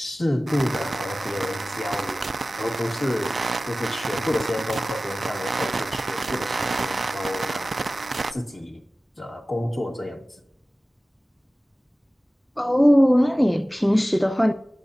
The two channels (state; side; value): normal; both; correlation 0.97